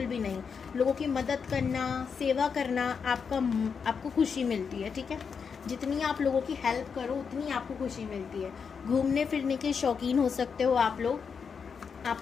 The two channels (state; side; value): quieter; right; 6.1 dB